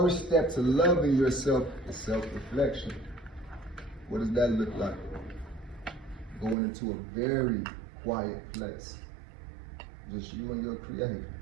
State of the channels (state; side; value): drops out; left; at 6.6 s